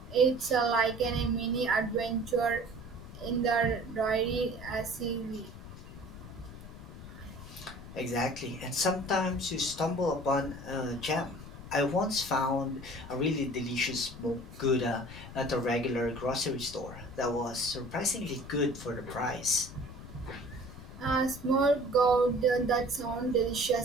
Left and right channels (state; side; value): noise; left; rumble, 14 dB below the sound